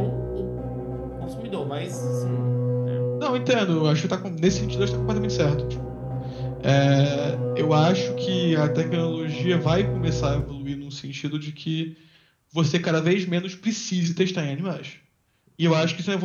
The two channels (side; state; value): both; identical; correlation 1.00